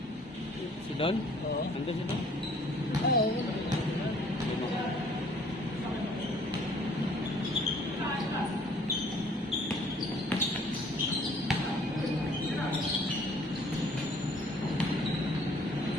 Si Don? Oo. Nandun si Don? Ay, oo.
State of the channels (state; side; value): normal; both; correlation 0.57